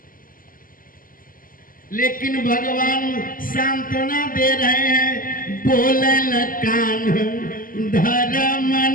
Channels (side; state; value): right; late; 0.41 ms